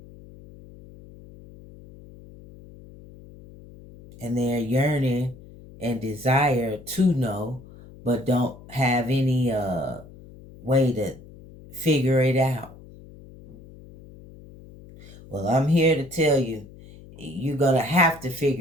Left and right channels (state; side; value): noise; left; hum, 20 dB below the sound